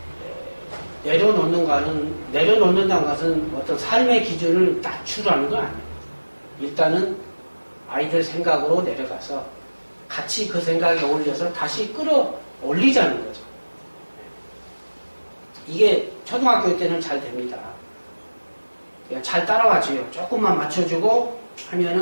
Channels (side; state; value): both; inverted; correlation -1.00